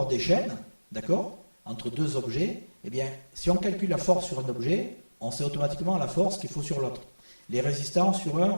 d'échelle, d'accord, entre deux objets, eh bien, si on calcule la force sur un objet, on sait automatiquement la force qu'il faut sur l'autre. Les résistances sur un,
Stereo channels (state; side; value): inverted; both; correlation -1.00